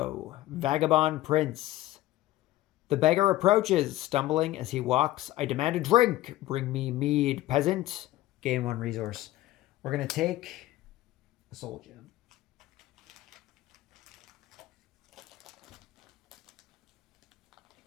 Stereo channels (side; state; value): right; quieter; 16.0 dB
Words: Vagabond Prince. The beggar approaches, stumbling as he walks. I demand a drink. Bring me mead, peasant. Gain 1 resource. We're going to take a soul gem.